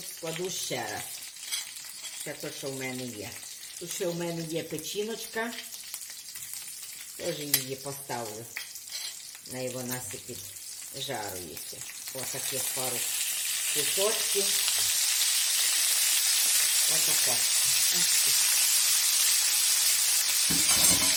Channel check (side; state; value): both; identical; correlation 1.00